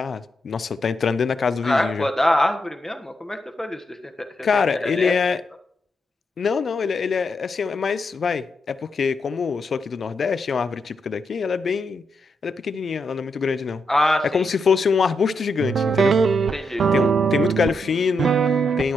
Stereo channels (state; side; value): normal; both; correlation 0.82